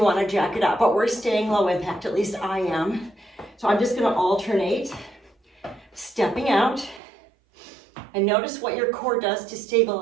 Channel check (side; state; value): left; drops out; at 7.0 s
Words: wanna jack it up, but we're staying low impact, at least I am. So I'm just gonna alternate, stepping out, and notice what your core does to